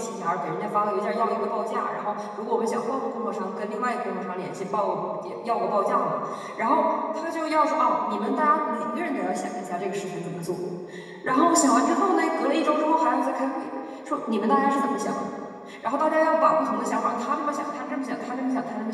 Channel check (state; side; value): identical; both; correlation 1.00